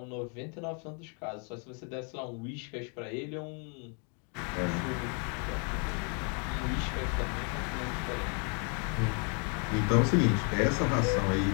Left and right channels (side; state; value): right; quieter; 38.4 dB